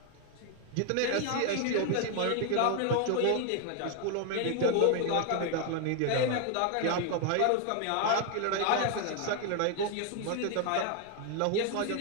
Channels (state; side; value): different; both; correlation 0.01